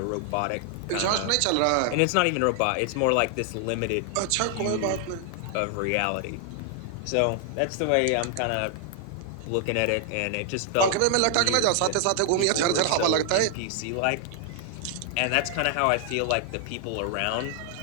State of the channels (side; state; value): both; different; correlation 0.00